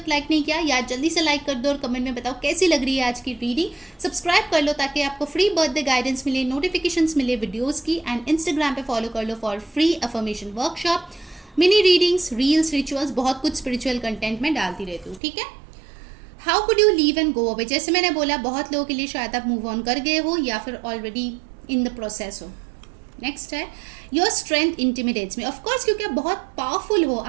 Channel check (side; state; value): left; drops out; at 15.2 s